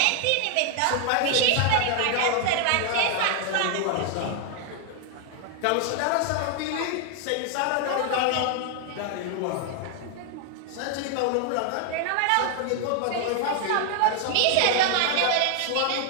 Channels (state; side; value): different; both; correlation 0.00